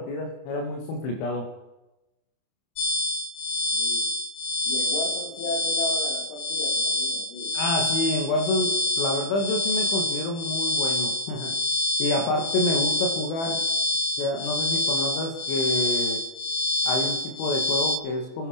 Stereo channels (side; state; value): right; late; 30 ms